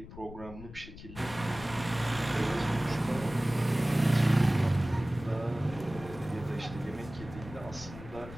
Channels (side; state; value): left; noise; rumble, 14 dB below the sound